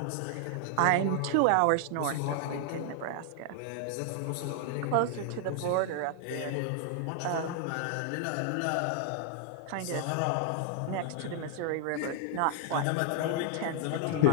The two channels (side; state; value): both; different; correlation 0.00